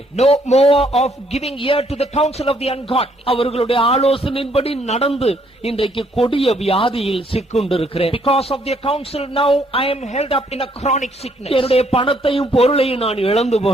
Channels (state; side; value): normal; both; correlation 0.68